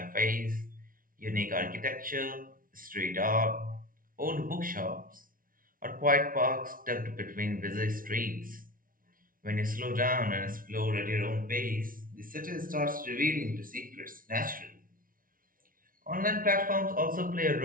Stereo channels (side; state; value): left; late; 0.41 ms